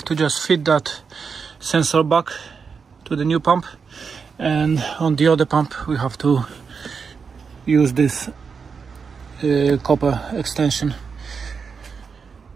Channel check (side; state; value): left; quieter; 5.7 dB